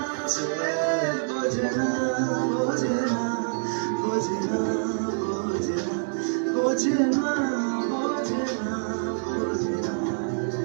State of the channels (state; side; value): silent; left; digital silence